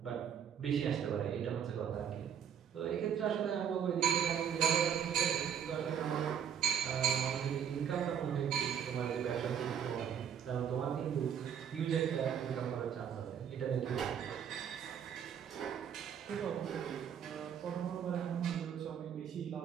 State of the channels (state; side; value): quieter; left; 8.4 dB